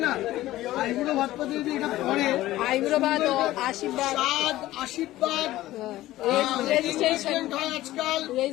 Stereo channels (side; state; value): right; quieter; 15.8 dB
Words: না, আইবুড়ো ভাতপাতে যদি এটা পরে, আইবুড়ো ভাত, আশীর্বাদ, আশীর্বাদ রেজিস্ট্রেশন হয় আজকাল,